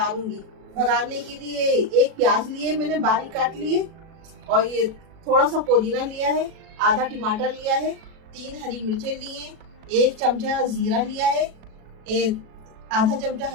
भगाने के लिए 1 प्याज लिए मैंने बारीक काट लिए और ये थोड़ा सा पुदीना लिया है, आधा टमाटर लिया है, 3 हरी मिर्चें ली हैं, 1 चमचा जीरा लिया है, आधा चमचा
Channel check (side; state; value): left; late; 37 ms